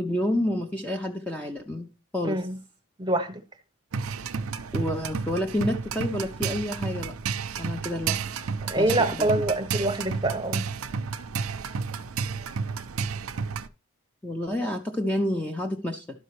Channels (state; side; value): normal; both; correlation 0.59